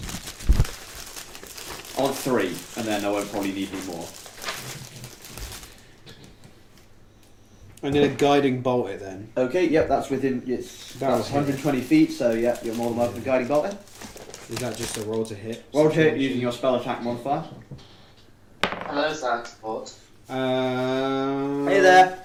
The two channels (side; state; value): both; identical; correlation 1.00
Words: On 3, and then I won't probably need any more. I'm gonna guiding bolt it then. Okay, yep, that's within. It's That's 120 feet, so yeah, you're more than welcome to guiding bolt it. Is that just a roll to hit? Roll to hit using your spell attack modifier. Hello, Science Support. Hey there.